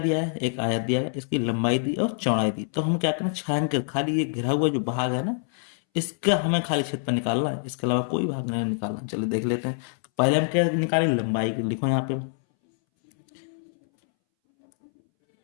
है, एक आयत दिया है, इसकी लंबाई दी और चौड़ाई दी। तो हम क्या करना है, छायांकित खाली ये घिरा हुआ जो भाग है ना, इसका हमें खाली क्षेत्रफल निकालना है, इसके अलावा कोई भाग नहीं निकालना। चलिए देख लेते हैं। तो पहले हम क्या निकालें, लंबाई। लिखो यहाँ पे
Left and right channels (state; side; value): silent; right; 61 dB below the other